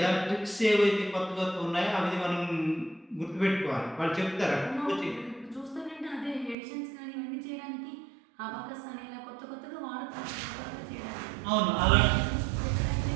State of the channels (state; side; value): drops out; left; at 6.6 s